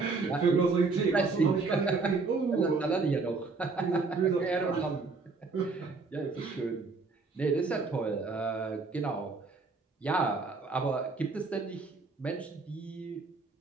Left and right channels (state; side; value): quieter; left; 4.1 dB